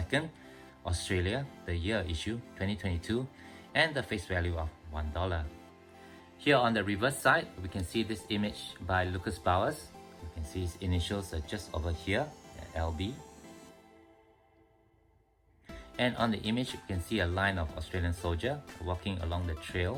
Australia, the year issue 2022, and the face value of $1. Here on the reverse side, we can see this image by Lucas Bowers. You can see his initials are just over here, LB. And on the image, you can see a line of Australian soldier walking along the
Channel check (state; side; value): identical; both; correlation 1.00